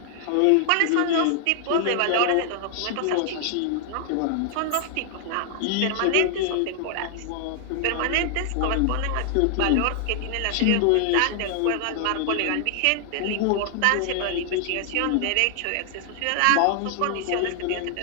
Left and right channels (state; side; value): different; both; correlation 0.00